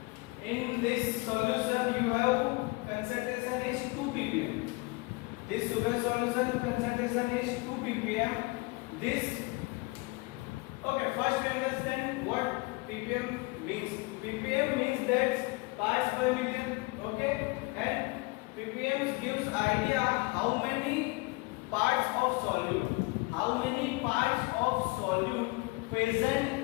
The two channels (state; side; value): quieter; right; 25.9 dB